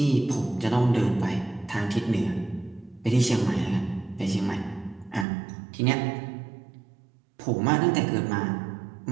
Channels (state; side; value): drops out; left; at 5.2 s